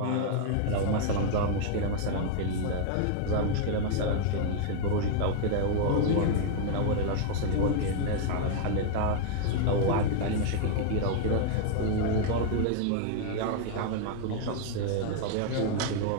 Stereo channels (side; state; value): both; different; correlation 0.00